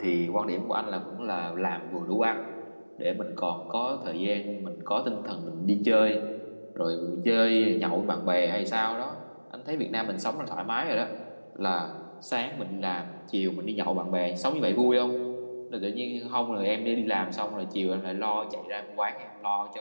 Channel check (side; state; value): both; inverted; correlation -1.00